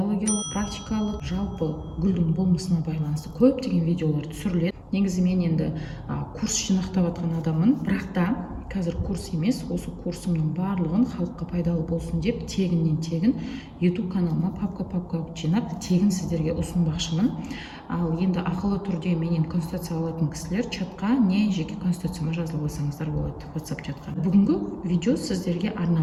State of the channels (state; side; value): identical; both; correlation 1.00